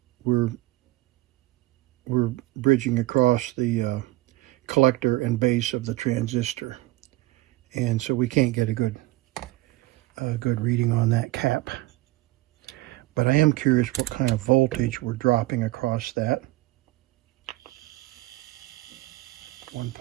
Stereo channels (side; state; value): left; quieter; 18.8 dB